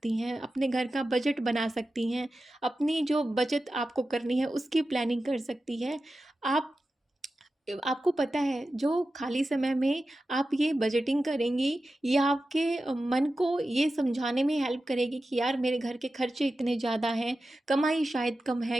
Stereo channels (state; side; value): normal; both; correlation 0.93